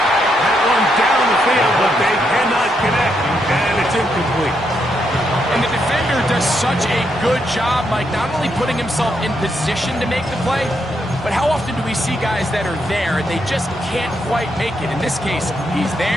That one down the field, but they cannot connect, and it's incomplete. And the defender does such a good job, Mike, not only putting himself in position to make the play, but how often do we see guys that are there and they just can't quite make it? In this case, he's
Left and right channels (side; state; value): both; normal; correlation 0.79